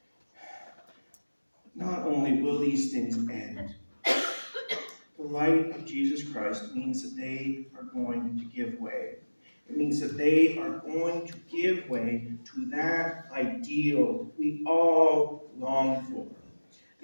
Not only will these things end, the light of Jesus Christ means that they are going to give way. It means that they are going to give way to that ideal we all long for.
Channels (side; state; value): both; inverted; correlation -1.00